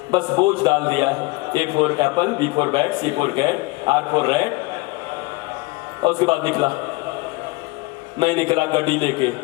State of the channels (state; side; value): quieter; right; 22.8 dB